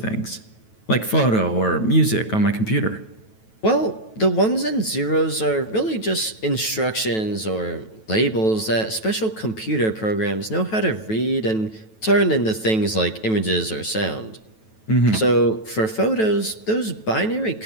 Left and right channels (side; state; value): right; late; 9.2 ms